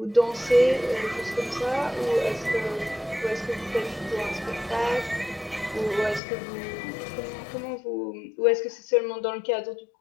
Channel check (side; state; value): right; drops out; at 6.2 s